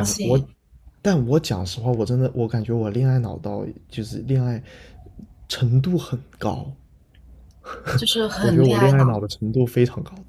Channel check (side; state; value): both; identical; correlation 1.00